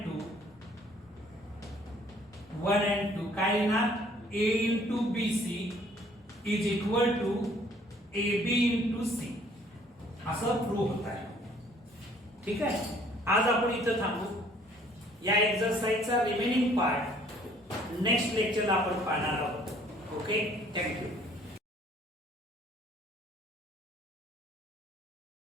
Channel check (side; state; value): both; normal; correlation 0.59